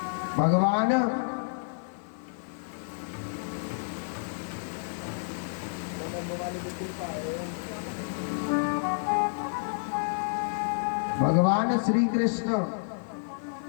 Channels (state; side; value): silent; right; digital silence